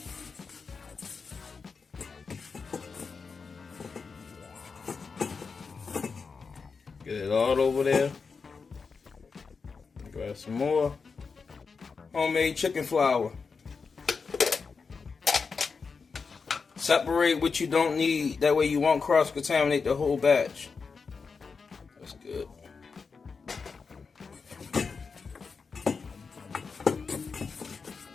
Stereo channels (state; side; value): quieter; right; 5.1 dB